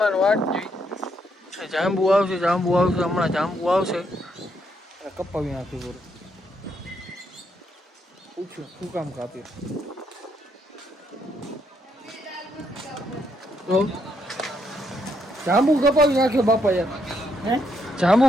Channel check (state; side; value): normal; both; correlation 0.76